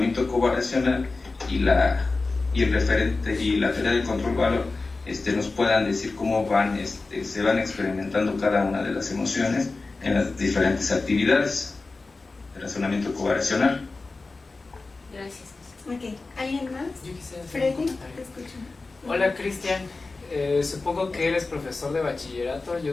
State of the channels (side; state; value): right; quieter; 3.7 dB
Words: covariacional y el referente y la teoría del control-valor nos puedan decir cómo se van experimentando cada una de las emociones en las diferentes actividades de razonamiento covariacional. Gracias. Ok, ¿alguien más? Yo quisiera hacer Freddy, un comentario. te escucho. Hola, Cristian. Supongo que eres profesor de bachillerato,